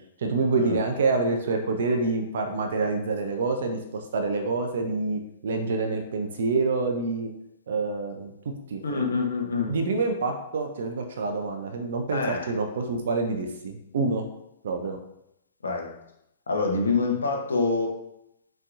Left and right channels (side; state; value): both; inverted; correlation -0.53